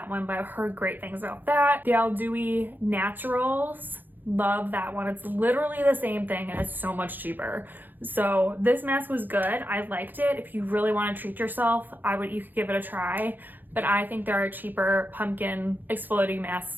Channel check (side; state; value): left; late; 0.088 ms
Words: one, but I've heard great things about that. The Aldui Naturals, love that one. It's literally the same thing and it's so much cheaper. So this mask was good. I liked it. If you really want to treat yourself, you could give it a try. But I think there are cheaper pumpkin exfoliating